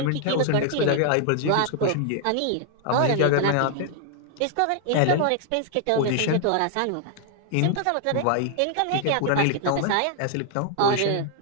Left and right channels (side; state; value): both; different; correlation 0.00